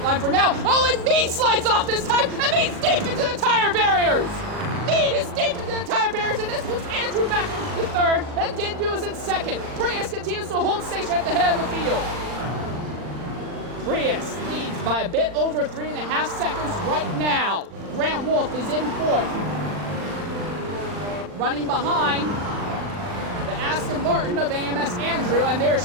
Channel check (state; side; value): late; left; 40 ms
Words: line for now. Oh, and Mead slides off this time, and Mead's deep into the tire barriers! Mead is deep into the tire barriers, and this puts Andrew back into the 3rd, and Dindu is in 2nd. Prius continues to hold station at the head of the field. Prius leads by a bit over 3.5 seconds right now. Grand Wolf is in 4th. Running behind the Aston Martin of AMS Andrew, and there's